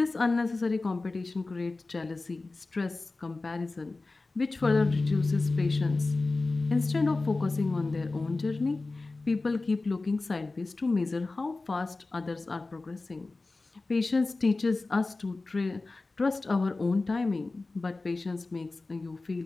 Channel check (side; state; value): right; quieter; 3.4 dB